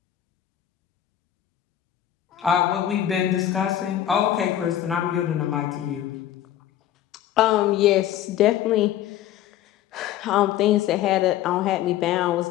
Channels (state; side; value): quieter; right; 11.8 dB